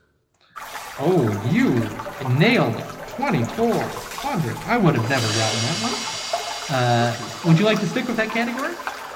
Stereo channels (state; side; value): identical; both; correlation 1.00